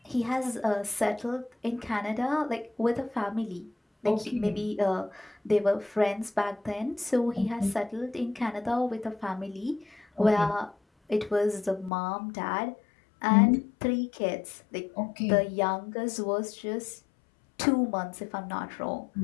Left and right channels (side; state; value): right; drops out; at 11.9 s